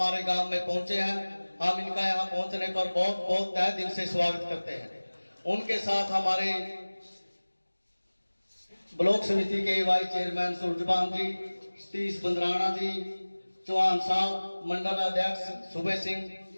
गांव में पहुंचे हैं। हम इनका यहां पहुंचने पर बहुत बहुत तहे दिल से स्वागत करते हैं। उनके साथ हमारे ब्लॉक समिति के वाइस चेयरमैन सूरजपाल जी, सतीश बंदराना जी, चौहान साहब, मंडल अध्यक्ष सुबह सिंह,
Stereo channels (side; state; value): both; inverted; correlation -1.00